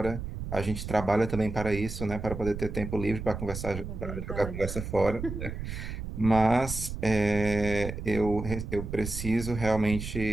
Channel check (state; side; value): noise; right; rumble, 7 dB below the sound